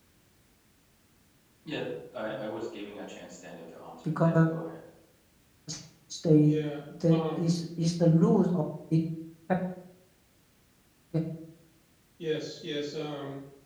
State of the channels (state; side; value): identical; both; correlation 1.00